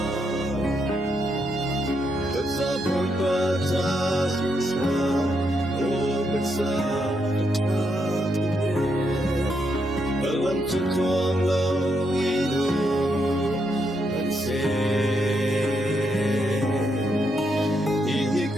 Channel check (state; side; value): normal; both; correlation 0.79